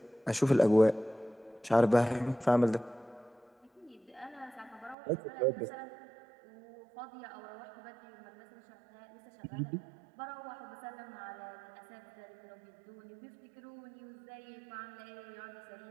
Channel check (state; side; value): drops out; left; at 5.0 s